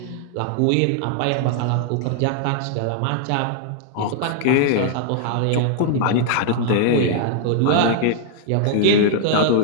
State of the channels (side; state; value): both; different; correlation -0.01